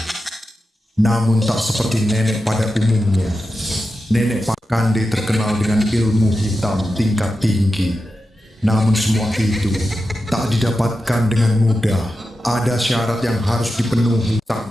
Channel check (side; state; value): both; normal; correlation 0.91